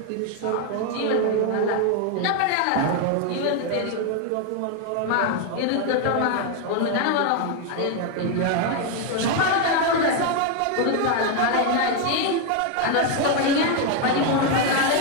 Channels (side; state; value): both; different; correlation 0.01